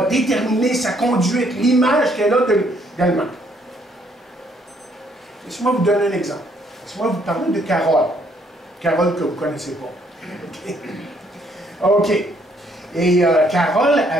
déterminer sa conduite, l'image qu'elle a d'elle-même. Laissez-moi vous donner un exemple. Laissez-moi vous parler de Carole. Carole que vous ne connaissez pas. OK. Et Carole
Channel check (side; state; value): both; normal; correlation 0.68